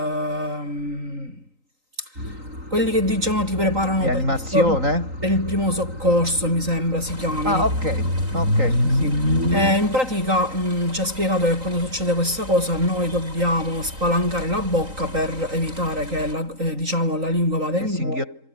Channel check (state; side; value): late; left; 3.9 ms